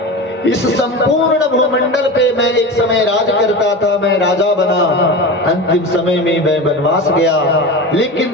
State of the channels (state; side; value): normal; both; correlation 0.27